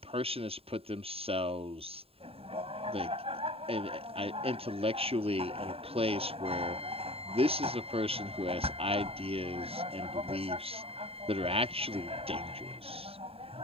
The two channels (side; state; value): left; late; 0.28 ms